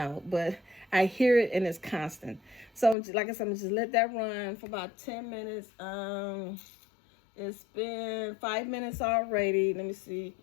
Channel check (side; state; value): right; drops out; at 3.0 s